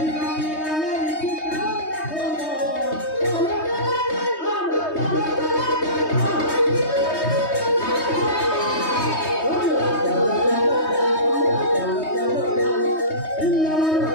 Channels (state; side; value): late; right; 3.2 ms